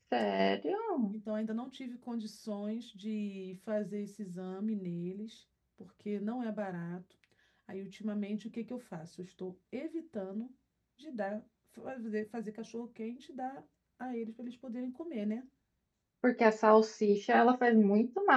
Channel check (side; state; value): both; identical; correlation 1.00